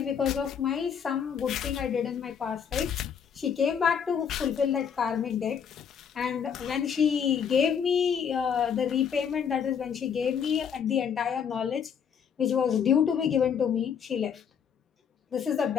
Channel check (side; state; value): right; quieter; 7.5 dB